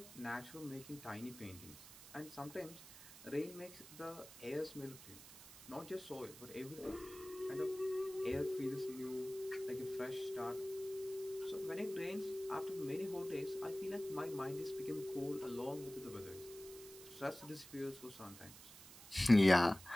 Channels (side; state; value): right; noise; hiss, 16 dB below the sound